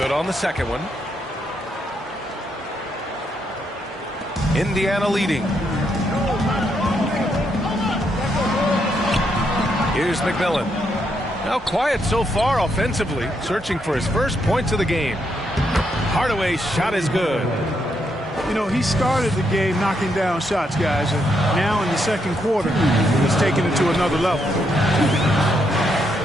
on the second one. Indiana leading. Here's McMillan. Now quiet so far offensively, searching for his first points of the game. Hardaway's shot is good. You know, he started the game knocking down shots, guys, and now in the second quarter, he's taking it to another level.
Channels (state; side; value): normal; both; correlation 0.78